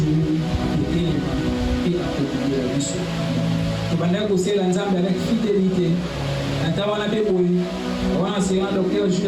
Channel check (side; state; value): both; identical; correlation 1.00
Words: kutelema pia kutulia biso tubanda kusela nzambe avec fidélité natawana beboyi wana sera docteur